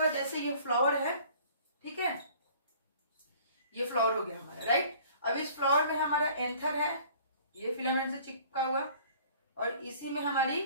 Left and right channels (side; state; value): both; inverted; correlation -0.51